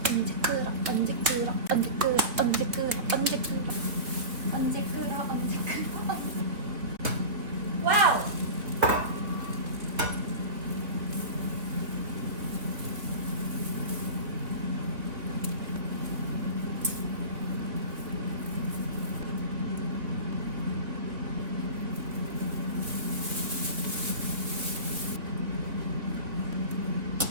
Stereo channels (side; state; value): left; late; 3.3 ms